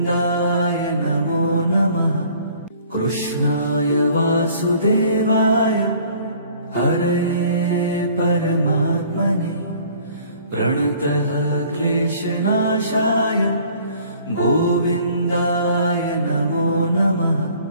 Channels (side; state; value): both; inverted; correlation -0.54